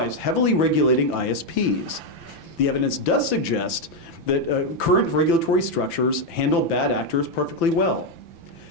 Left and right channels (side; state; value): right; late; 5.9 ms